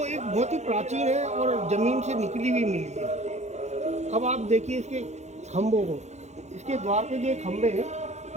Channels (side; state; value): left; late; 0.33 ms